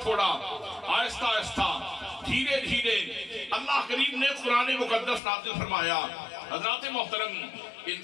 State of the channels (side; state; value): right; drops out; at 5.2 s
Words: آہستہ آہستہ دھیرے دھیرے اللہ کریم نے قرآن مقدس نازل فرمایا حضرات محترم